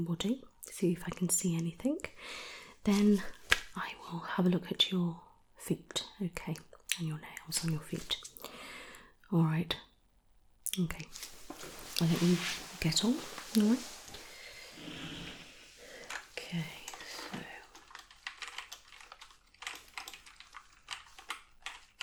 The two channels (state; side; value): identical; both; correlation 1.00